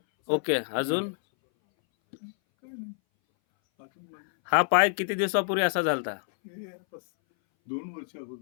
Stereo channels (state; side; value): silent; right; 59 dB below the other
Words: ओके, अजून? काय नाही. अजून म्हणजे हा पाय किती दिवसापूर्वी असा झालता? हे बस 2 वर्ष